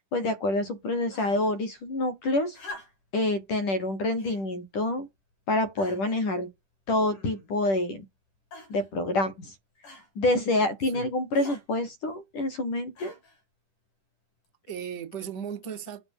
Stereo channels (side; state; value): right; late; 10 ms